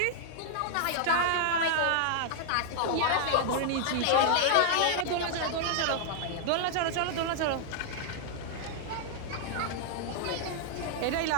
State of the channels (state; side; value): different; both; correlation -0.01